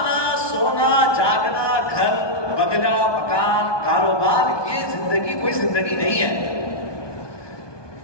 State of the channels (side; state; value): right; late; 1.2 ms